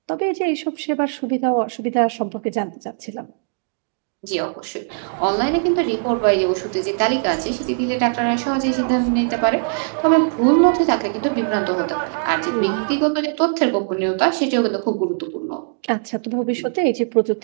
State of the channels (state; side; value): silent; left; digital silence